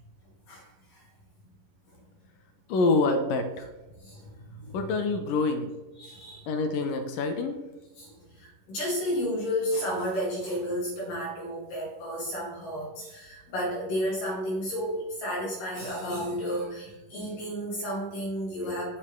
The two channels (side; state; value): right; late; 11 ms